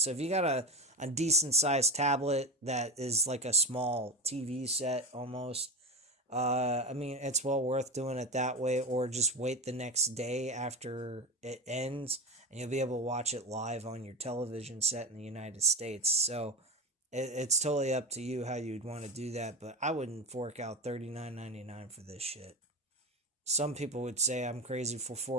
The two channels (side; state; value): both; normal; correlation 0.22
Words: if you got a decent-sized tablet that is like a small TV set almost, I mean, it's well worth doing it that way, or just wait the next day after it ends, and you'll be able to watch it live on your television set in the United States. So it's totally up to you how you'd want to do that, but I wouldn't fork out $39.99 for this shit. Some people would say I'm crazy for